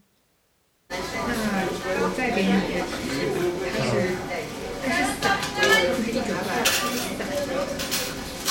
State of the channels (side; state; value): both; identical; correlation 1.00